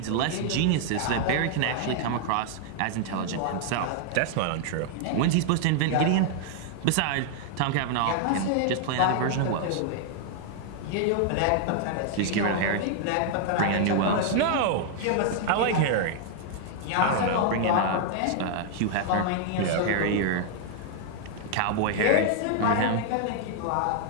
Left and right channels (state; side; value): different; both; correlation 0.00